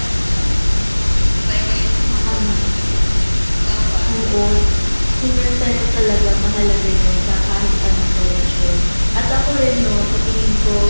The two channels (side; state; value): both; inverted; correlation -1.00